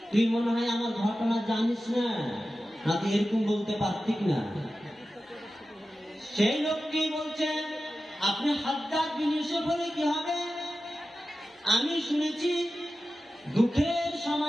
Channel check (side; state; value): both; normal; correlation 0.94